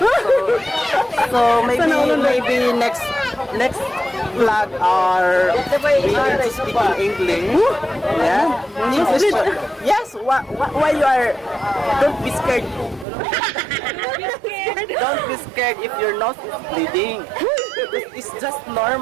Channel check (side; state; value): left; drops out; at 13.1 s